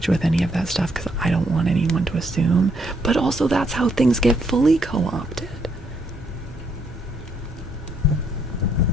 with any of that stuff because I don't want anyone to assume, but also that's how things get fully co-opted.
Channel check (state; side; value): normal; both; correlation 0.72